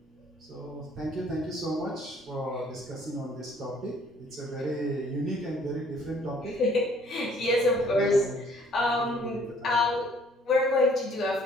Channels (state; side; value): normal; both; correlation 0.59